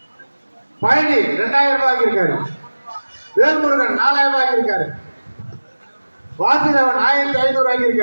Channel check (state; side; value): inverted; both; correlation -1.00